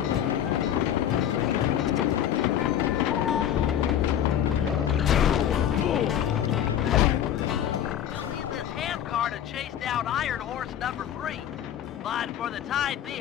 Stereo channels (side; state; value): right; quieter; 10.4 dB